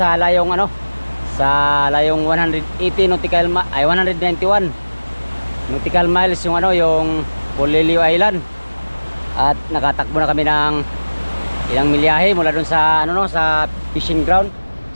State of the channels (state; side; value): inverted; both; correlation -1.00